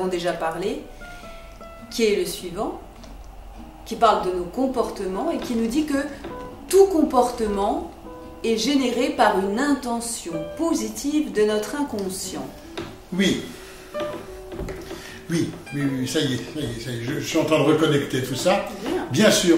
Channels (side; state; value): both; identical; correlation 1.00